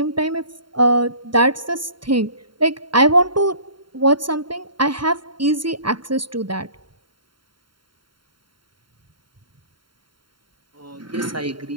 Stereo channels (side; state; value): left; late; 0.73 ms